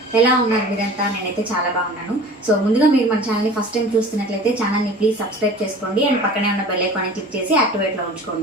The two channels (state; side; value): normal; both; correlation 0.41